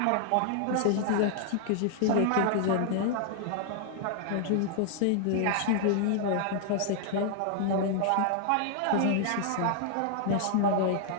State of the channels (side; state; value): both; different; correlation 0.00